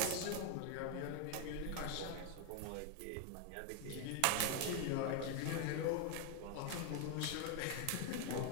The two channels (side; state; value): both; different; correlation 0.01